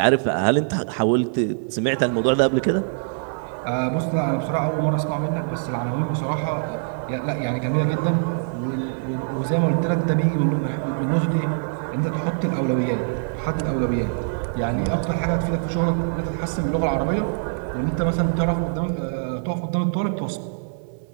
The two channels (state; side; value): silent; left; 58 dB below the other